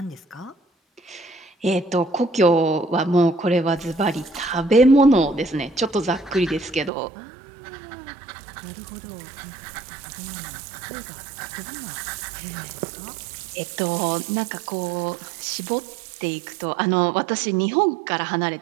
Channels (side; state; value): left; drops out; at 6.9 s